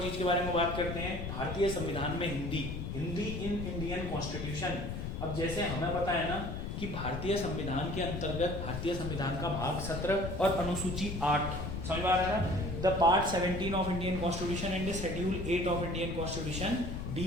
चीज के बारे में बात करते हैं, भारतीय संविधान में Hindi, Hindi in Indian constitution. अब जैसे हमें पता है ना कि भारतीय संविधान के अंतर्गत भारतीय संविधान का भाग 17 और अनुसूची 8, समझ में आ रहा है ना? The part 17 of Indian constitution and schedule 8 of Indian constitution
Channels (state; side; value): noise; left; rumble, 5 dB below the sound